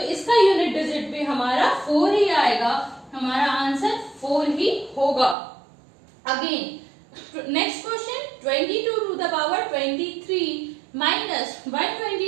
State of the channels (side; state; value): left; drops out; at 5.4 s